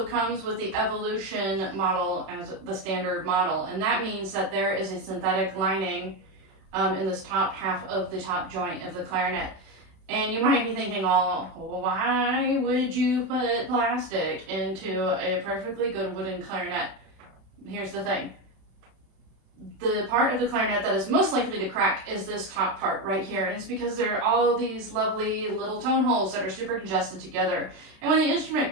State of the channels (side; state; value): left; late; 31 ms